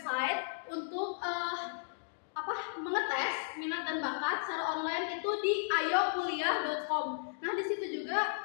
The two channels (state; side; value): silent; right; digital silence